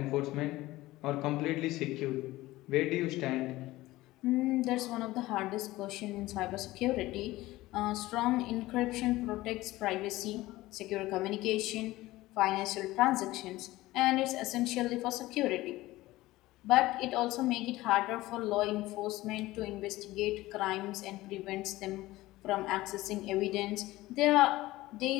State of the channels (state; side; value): quieter; right; 17.9 dB